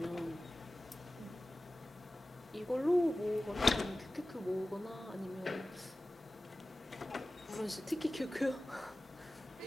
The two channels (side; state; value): both; normal; correlation 0.96